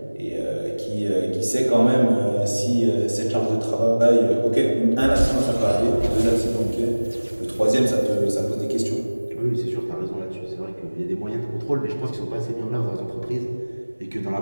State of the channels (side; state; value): both; inverted; correlation -1.00